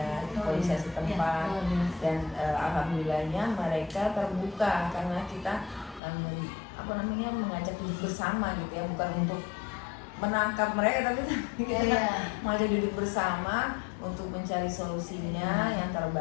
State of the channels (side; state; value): right; drops out; at 6.0 s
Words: polisi setempat, dan alhamdulillahnya mereka terbuka karena kita mengajak duduk bersama gitu ya, bukan untuk menangkap mereka tapi kita mengajak duduk bersama untuk mencari solusinya yang